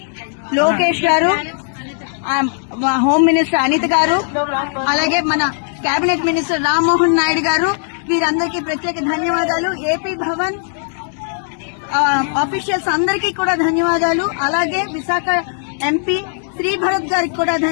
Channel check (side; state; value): right; silent; digital silence